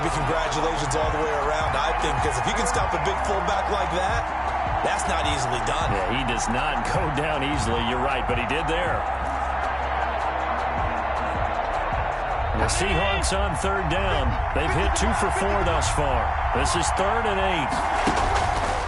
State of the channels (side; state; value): both; identical; correlation 1.00